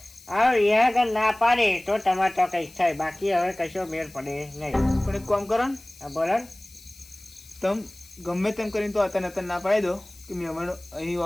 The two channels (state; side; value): noise; left; hiss, 22 dB below the sound